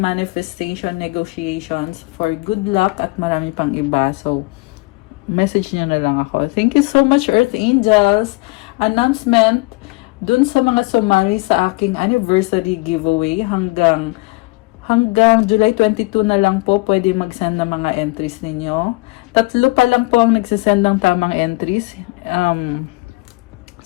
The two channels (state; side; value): quieter; right; 24.7 dB